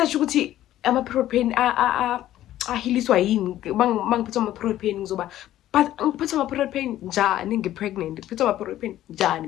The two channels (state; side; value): quieter; right; 13.3 dB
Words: ukuthi ama protein ahiliswa yini mangiphethe ama protein ngizoba but ngiphethe ama protein njani ngipregnant ngiphethe ama protein njani